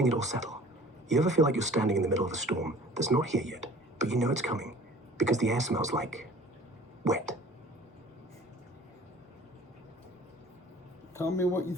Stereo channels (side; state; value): both; normal; correlation 0.48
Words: it all settle. You ever feel like you're standing in the middle of a storm that's not here yet, but you know it's coming because the air smells like wet? Tell me what you